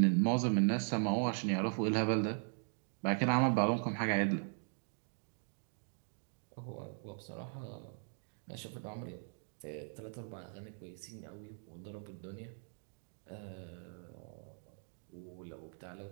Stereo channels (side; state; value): left; silent; 52 dB below the other